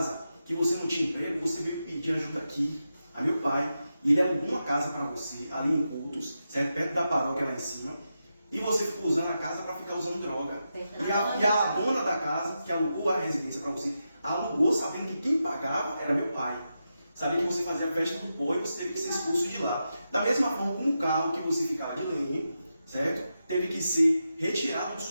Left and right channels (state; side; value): inverted; both; correlation -0.88